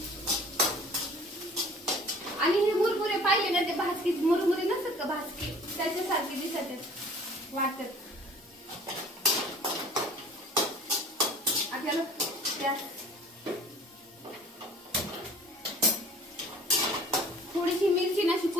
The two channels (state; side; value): normal; both; correlation 0.48